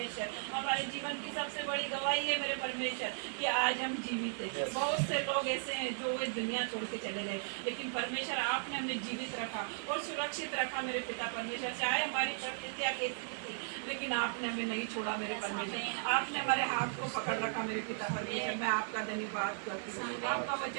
हमारे जीवन की सबसे बड़ी गवाही है मेरे परमेश्वर कि आज हम जीवित हैं। बहुत से लोग ऐसे हैं जो वे दुनिया छोड़ के चले गए, लेकिन परमेश्वर आपने हमें जीवित रखा और सुरक्षित रखा मेरे पिता परमेश्वर। चाहे हमारी परिस्थितियाँ कैसी थी, लेकिन आपने हमें नहीं छोड़ा मेरे परमेश्वर। आपने हमारे हाथ को पकड़ रखा मेरे पिता परमेश्वर। मैं आपका धन्यवाद करती हूँ। आपका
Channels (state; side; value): silent; left; digital silence